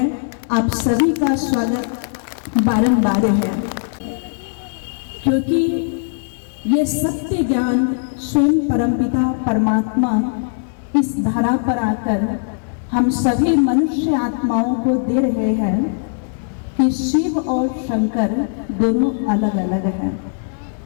आप सभी का स्वागत बारंबार है। क्योंकि ये सत्य ज्ञान स्वयं परमपिता परमात्मा इस धरा पर आकर हम सभी मनुष्य आत्माओं को दे रहे हैं कि शिव और शंकर दोनों अलग अलग हैं।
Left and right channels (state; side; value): silent; right; digital silence